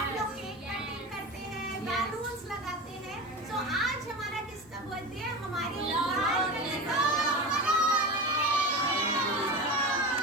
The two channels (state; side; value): normal; both; correlation 0.27